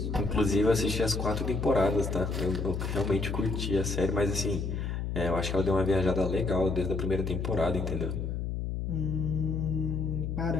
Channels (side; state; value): left; noise; hum, 2 dB below the sound